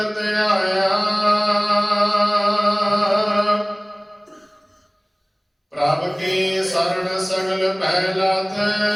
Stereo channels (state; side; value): identical; both; correlation 1.00